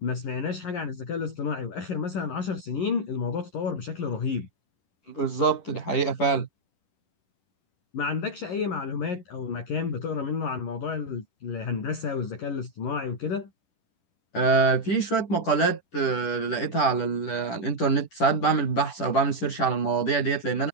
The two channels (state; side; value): late; right; 10 ms